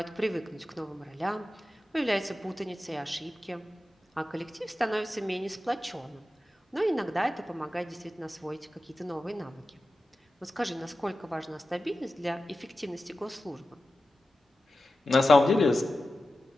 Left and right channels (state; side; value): normal; both; correlation 0.93